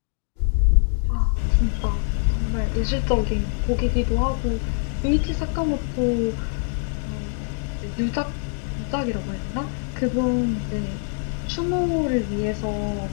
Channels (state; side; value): silent; right; 60 dB below the other